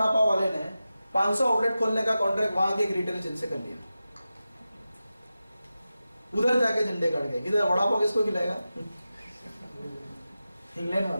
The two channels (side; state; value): both; inverted; correlation -0.93